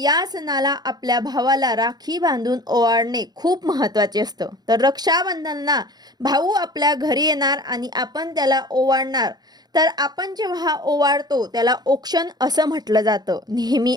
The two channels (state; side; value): late; left; 0.19 ms